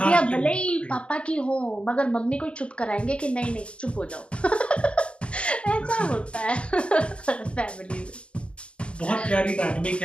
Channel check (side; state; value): right; late; 0.054 ms